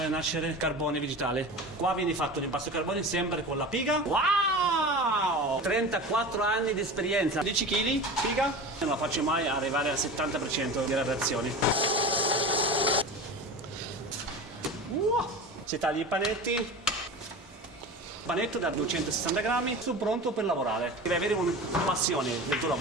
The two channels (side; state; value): both; normal; correlation 0.31